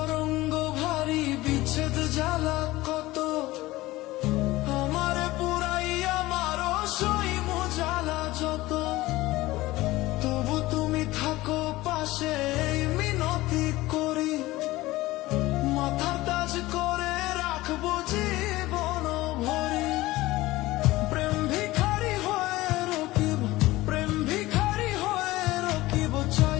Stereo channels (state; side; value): quieter; right; 18.5 dB